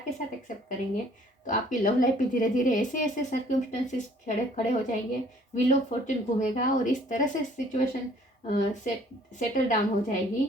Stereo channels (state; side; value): normal; both; correlation 0.57